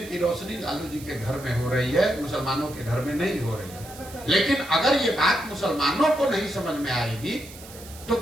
की रोशनी लालू जी के घर में हो रही है, मुसलमानों के घर में नहीं हो रही है। लेकिन अगर ये बात मुसलमानों को नहीं समझ में आएगी तो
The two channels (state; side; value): noise; right; hiss, 17 dB below the sound